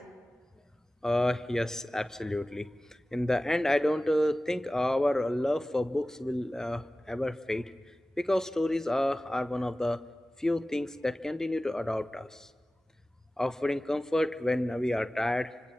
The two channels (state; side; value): normal; both; correlation 0.97